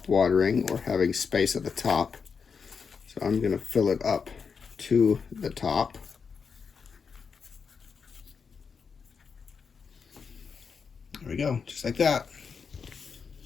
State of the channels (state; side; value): quieter; right; 5.8 dB